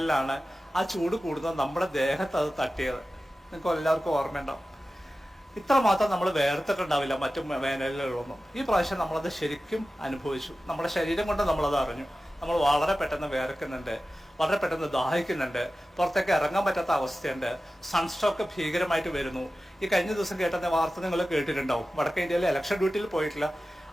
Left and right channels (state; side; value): normal; both; correlation 0.95